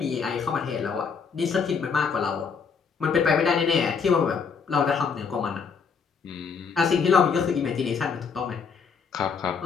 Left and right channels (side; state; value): right; quieter; 5.9 dB